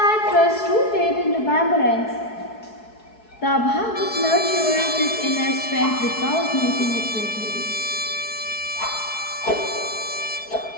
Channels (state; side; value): late; right; 4.7 ms